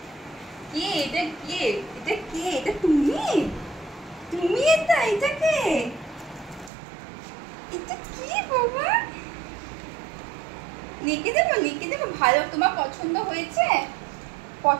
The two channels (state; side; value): drops out; left; at 6.7 s